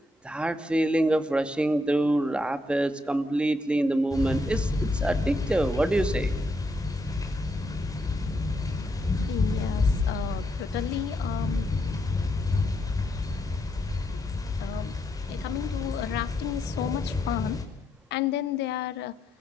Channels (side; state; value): both; normal; correlation 0.79